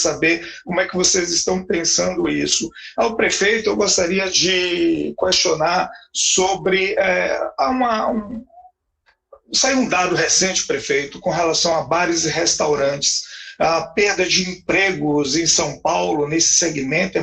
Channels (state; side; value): identical; both; correlation 1.00